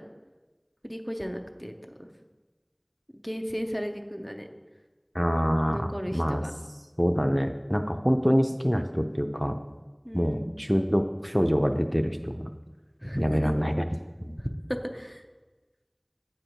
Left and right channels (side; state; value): both; identical; correlation 1.00